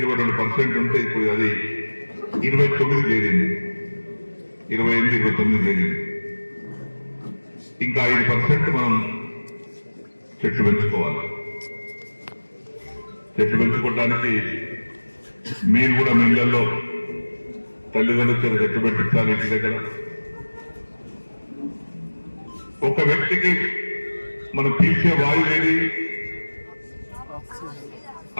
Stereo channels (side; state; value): both; inverted; correlation -1.00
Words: ఉంటే ఇప్పుడు అది 29 చేరింది, 28, 29 చేరింది. ఇంకా 5% మనం చెట్లు పెంచుకోవాలి. చెట్లు పెంచుకోవడానికి మీరు కూడా మీ ఇళ్లలో తల్లిదండ్రులు చెట్టు పెట్టించాలి. ఇంటి దగ్గర ఒక వ్యక్తికి మనం పీల్చే వాయువు ఏది?